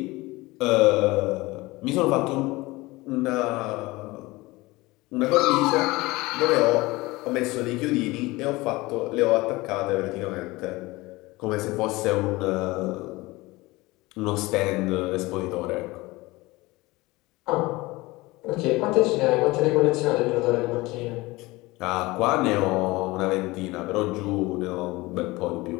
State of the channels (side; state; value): right; quieter; 21.2 dB